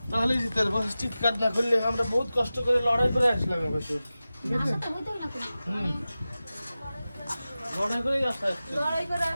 তাহলে জিতের বস চিৎকার না করলে আমরা বহুত কষ্ট করে লড়াই করে আসলাম এবার তো লড়াই করে আসা লড়াই করে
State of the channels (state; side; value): inverted; both; correlation -0.95